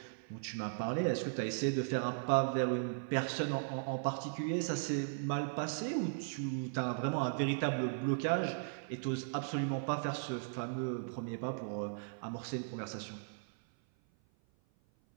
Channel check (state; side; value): silent; left; 53 dB below the other